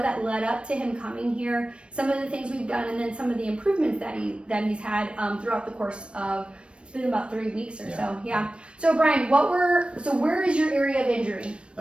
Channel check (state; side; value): late; left; 0.058 ms